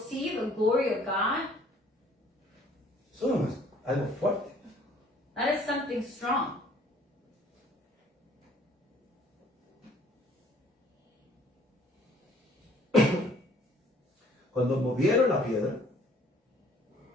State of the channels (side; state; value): both; normal; correlation 0.58